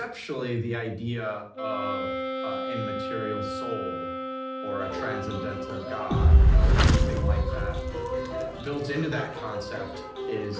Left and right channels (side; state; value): both; identical; correlation 1.00